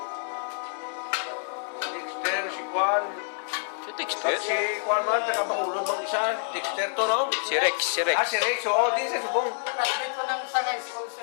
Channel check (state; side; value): silent; right; 60 dB below the other